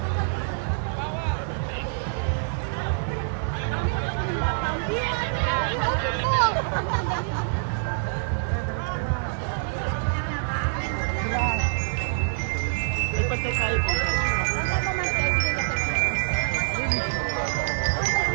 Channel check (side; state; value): left; silent; 61 dB below the other